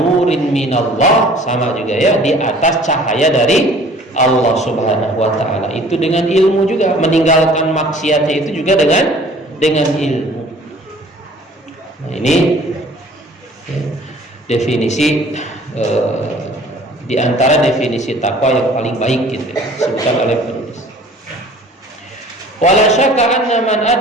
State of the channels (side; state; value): both; normal; correlation 0.51